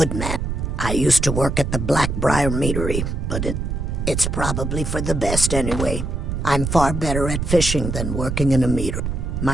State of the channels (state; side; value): noise; right; rumble, 2 dB below the sound